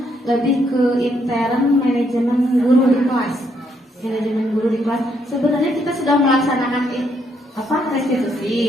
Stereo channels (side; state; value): both; normal; correlation 0.74